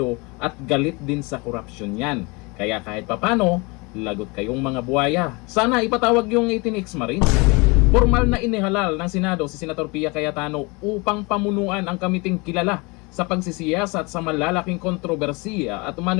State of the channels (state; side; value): quieter; right; 27.4 dB